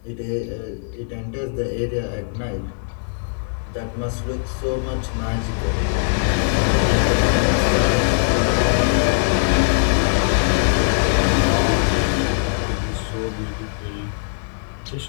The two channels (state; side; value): silent; right; 65 dB below the other